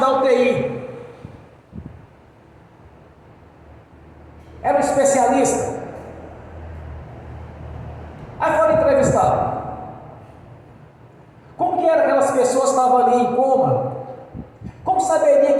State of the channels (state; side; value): identical; both; correlation 1.00